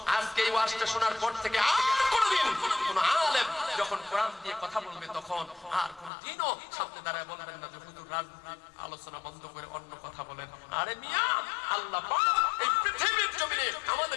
আজকে এই ওয়াজটা শোনার পর থেকে আর কোনোদিন কোন আলেম যখন কোরআন দিয়ে কথা বলবে তখন আর কোনদিনও সামনে দাঁড়ায় বলবেন না যে হুজুর রাজনৈতিক আলোচনা বন্ধ করে অন্য কথা বলেন। আরে মিয়া, আল্লাহ পাক এই পৃথিবীর জমিনে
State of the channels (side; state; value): right; drops out; at 6.1 s